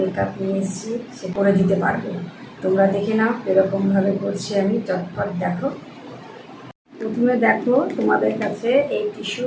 নিয়ে এসেছি, সে করে দিতে পারবে। তোমরা দেখে নাও এরকমভাবে করছি আমি, চটপট দেখো। প্রথমে দেখো তোমাদের কাছে এই টিস্যু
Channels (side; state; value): both; identical; correlation 1.00